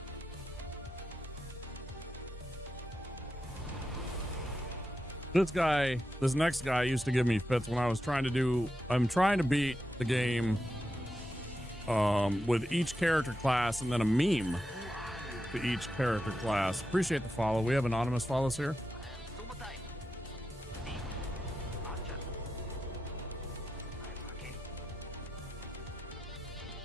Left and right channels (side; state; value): both; normal; correlation 0.88